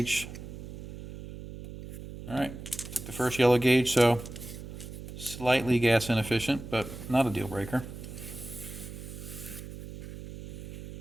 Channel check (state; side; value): noise; right; hum, 11 dB below the sound